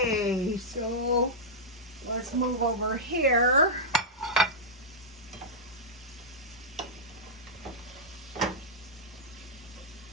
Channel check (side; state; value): both; normal; correlation -0.09